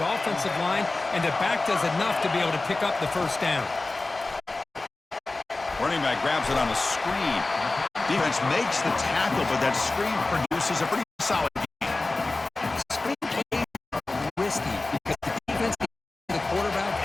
offensive line, and the back does enough to be able to pick up the first down. Running back grabs it on a screen. Defense makes the tackle, but that screen produces a pretty solid game. Screen play is risky because the defense can the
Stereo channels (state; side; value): quieter; right; 3.2 dB